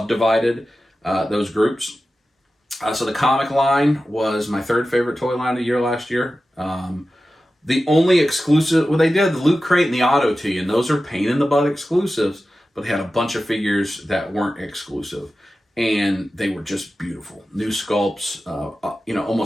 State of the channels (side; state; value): both; normal; correlation 0.94